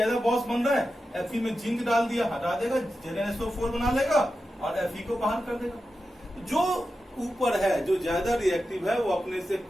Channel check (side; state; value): both; normal; correlation 0.91